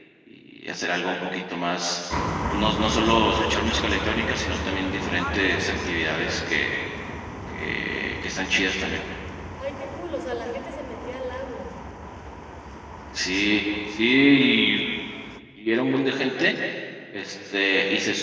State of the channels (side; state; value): both; identical; correlation 1.00